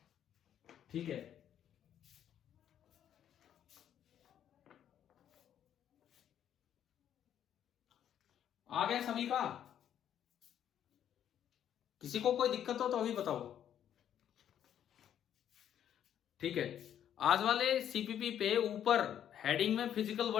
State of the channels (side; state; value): right; quieter; 10.0 dB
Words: ठीक है, आ गया सभी का? किसी को कोई दिक्कत हो तो अभी बताओ। ठीक है, आज वाले सीपीपी पे ऊपर हेडिंग में फिजिकल